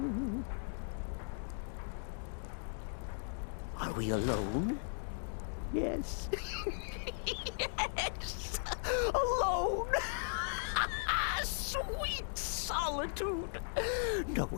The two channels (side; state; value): right; silent; digital silence